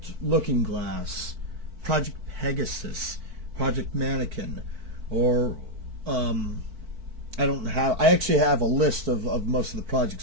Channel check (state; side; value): late; left; 4.5 ms